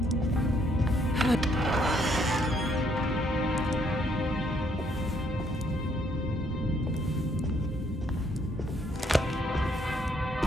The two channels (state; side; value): normal; both; correlation 0.69